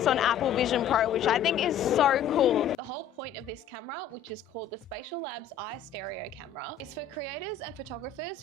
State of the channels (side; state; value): right; quieter; 8.0 dB